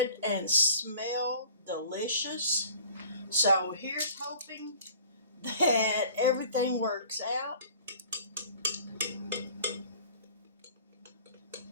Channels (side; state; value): both; inverted; correlation -0.48